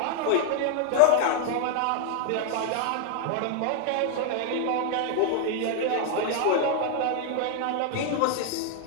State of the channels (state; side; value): different; both; correlation 0.00